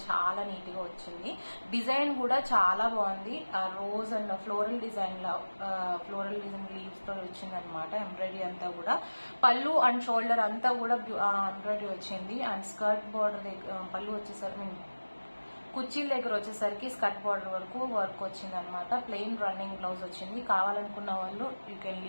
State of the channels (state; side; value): inverted; both; correlation -1.00